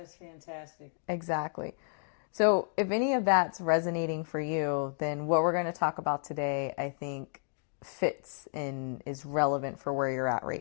fantastic. Exactly. So if any of that's resonating for you, then what we're going to talk about today, I think, fits and is relevant for where you're at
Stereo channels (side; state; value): right; silent; 57 dB below the other